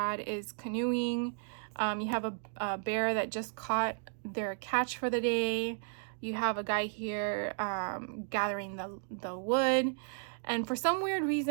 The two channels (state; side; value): silent; left; 55 dB below the other